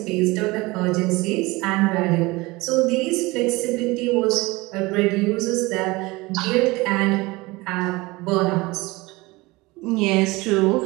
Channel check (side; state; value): left; quieter; 22.3 dB